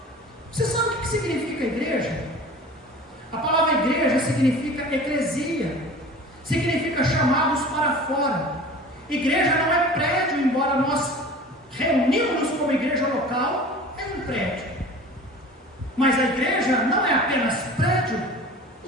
Você sabe o que significa igreja? A palavra igreja significa eclesia, significa chamados para fora. Igreja não é prédio, embora nós reunimos como igreja local, é um prédio. Mas a igreja não é apenas prédio,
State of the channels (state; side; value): normal; both; correlation 0.40